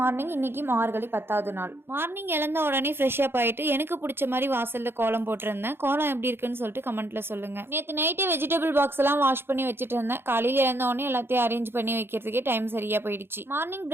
இன்னைக்கு மார்கழி 10வது நாள். மார்னிங் எழுந்த உடனே ஃப்ரெஷ் அப் ஆயிட்டு எனக்கு பிடிச்ச மாதிரி வாசல்ல கோலம் போட்டிருந்தேன். கோலம் எப்படி இருக்குன்னு சொல்லிட்டு கமெண்ட்ல சொல்லுங்க. நேற்று நைட்டே வெஜிடபிள் பாக்ஸ் எல்லாம் வாஷ் பண்ணி வச்சுட்டு இருந்தேன். காலையில எழுந்த உடனே எல்லாத்தையும் அரேஞ்ச் பண்ணி வைக்கிறதுக்கே டைம் சரியா போயிடுச்சு. மார்னிங்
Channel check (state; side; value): late; left; 0.11 ms